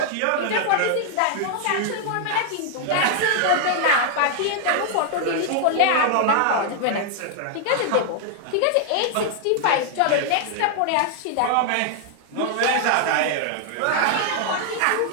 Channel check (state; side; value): different; both; correlation 0.00